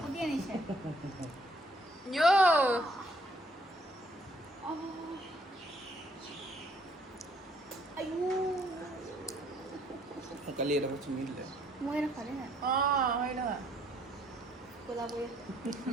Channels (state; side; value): normal; both; correlation 0.65